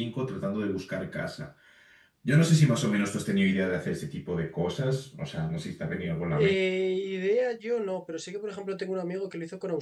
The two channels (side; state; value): both; identical; correlation 1.00